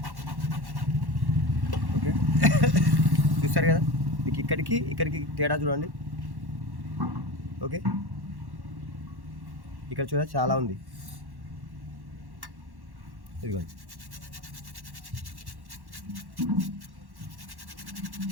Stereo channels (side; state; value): left; late; 1.1 ms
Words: ఓకే, చూస్తారు కదా, మీకు ఇక్కడికి తేడా చూడండి. ఓకే, ఇక్కడ చూడ చాలా ఉంది. ఇదిగోండి,